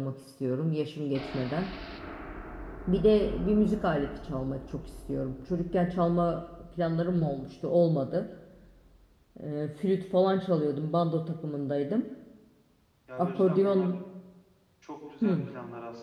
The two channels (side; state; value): both; identical; correlation 1.00